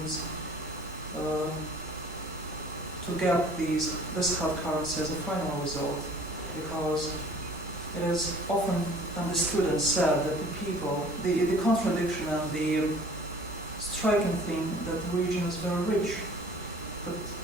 to get this hard currency as a final result, because it is often understood and said that the people, the contradiction and the striking thing that the region is very rich, but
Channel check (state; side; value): normal; both; correlation 0.50